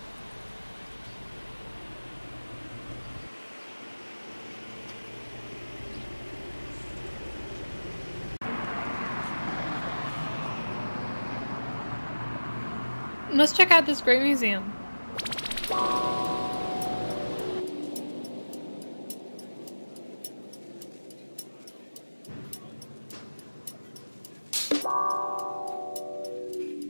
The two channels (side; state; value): both; inverted; correlation -1.00